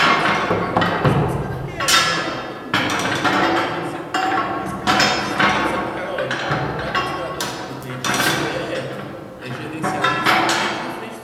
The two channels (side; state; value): both; identical; correlation 1.00